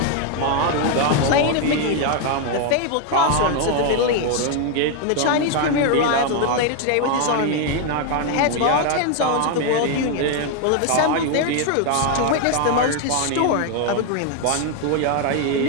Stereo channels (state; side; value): different; both; correlation 0.01